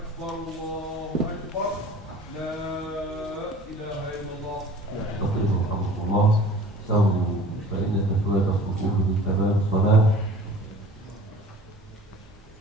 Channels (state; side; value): normal; both; correlation 0.46